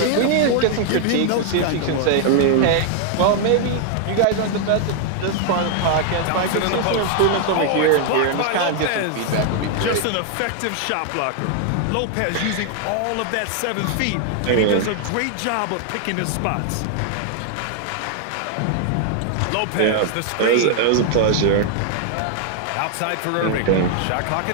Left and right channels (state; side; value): different; both; correlation 0.00